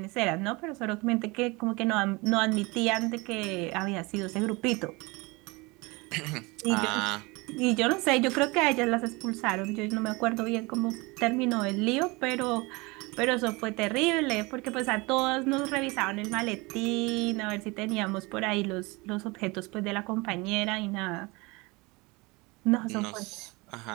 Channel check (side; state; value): left; quieter; 25.2 dB